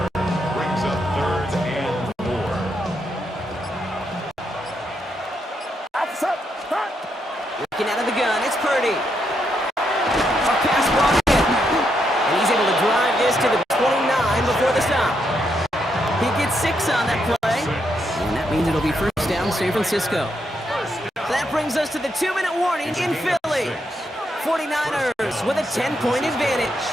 Looking out of the gun, it's Purdy. A pass brought in. And he's able to drive this to the 29 before the stop. He gets 6 on that play. And that means it'll be first down San Francisco. That brings us to the 2-minute warning in Philly. 49ers with a 10-point advantage.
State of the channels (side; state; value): both; normal; correlation 0.79